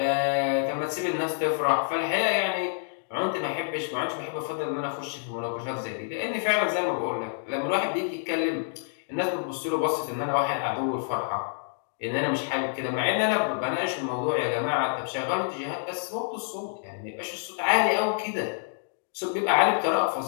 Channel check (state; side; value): silent; right; digital silence